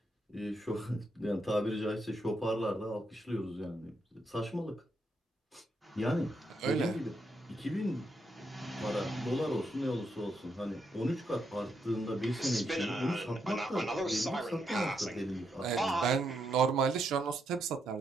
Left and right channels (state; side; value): normal; both; correlation 0.80